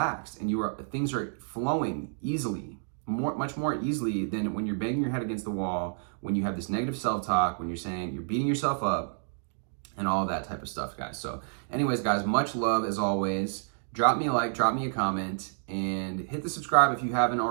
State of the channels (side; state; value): left; silent; digital silence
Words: and things are flowing easily, much more easily than when you're banging your head against the wall, when you have this negative self-talk, when you're beating yourself up, and all that type of stuff, guys. So anyways, guys, much love as always. Drop me a like, drop me a comment, and hit the subscribe if you haven't